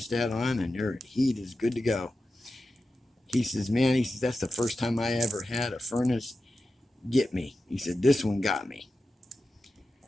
on, and your heat is good to go. He says, man, he says, that's the first time I ever had a furnace get me. He said, this one got me.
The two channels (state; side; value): normal; both; correlation 0.92